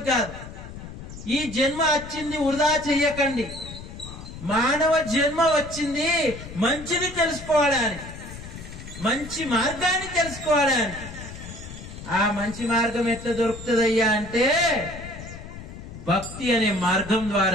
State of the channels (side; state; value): left; noise; rumble, 13 dB below the sound